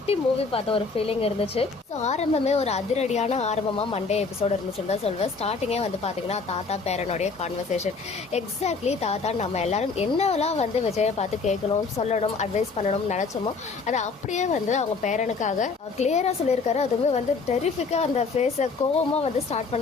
மூவி பார்த்த ஒரு ஃபீலிங் இருந்துச்சு. ஸோ ஆரம்பமே ஒரு அதிரடியான ஆரம்பமாக மண்டே எபிசோடு இருந்துச்சுன்னு தான் சொல்வேன். ஸ்டார்டிங்கே வந்து பார்த்தீங்கன்னா தாத்தா பேரனுடைய கான்வர்சேஷன். எக்ஸாக்ட்லி தாத்தா நம்ம எல்லாரும் என்னெல்லாம் வந்து விஜயை பார்த்து கேட்கணும், சொல்லணும், அட்வைஸ் பண்ணணும்னு நினச்சோமோ அதை அப்படியே வந்து அவங்க பேரனுக்காக கிளியராக சொல்லியிருக்காரு. அதுவுமே வந்து டெரிஃபிக்காக அந்த ஃபேஸை கோவமாக வந்து ஸ்டார்ட்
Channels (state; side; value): quieter; right; 4.5 dB